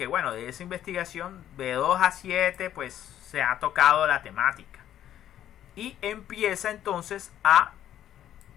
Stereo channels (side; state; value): right; quieter; 11.3 dB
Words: bueno, de esa investigación de 2 a 7 pues se ha tocado la temática. Y empieza entonces a...